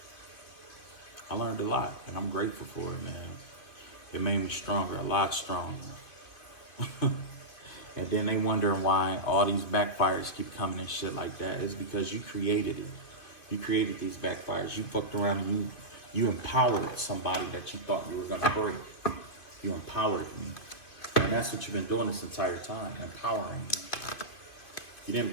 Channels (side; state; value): right; late; 2.7 ms